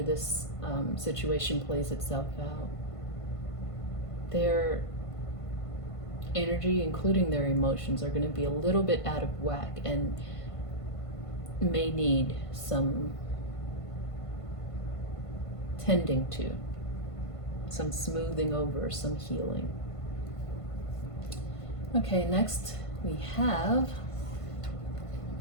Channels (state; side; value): late; right; 1.5 ms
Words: this situation plays itself out. Their energy, including their emotions, are going to be a little bit out of whack and may need some tending to, some smoothing over, some healing. Okay, next we have